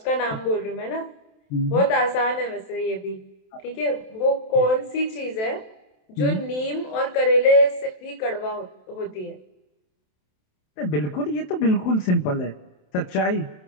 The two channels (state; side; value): late; right; 27 ms